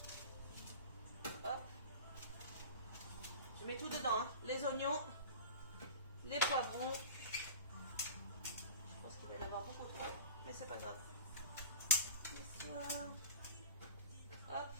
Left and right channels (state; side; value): inverted; both; correlation -0.34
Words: Hop. Je mets tout dedans, hein. Les oignons, les poivrons. Je pense qu'il va y en avoir beaucoup trop, mais c'est pas grave. Hop.